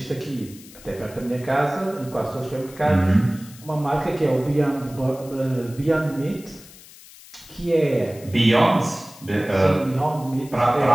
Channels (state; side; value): noise; left; hiss, 20 dB below the sound